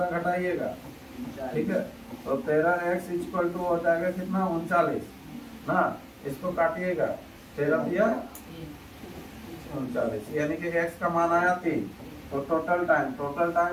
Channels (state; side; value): identical; both; correlation 1.00